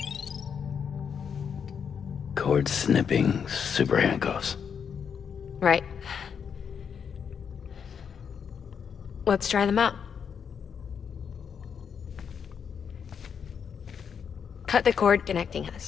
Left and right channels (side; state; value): right; quieter; 7.1 dB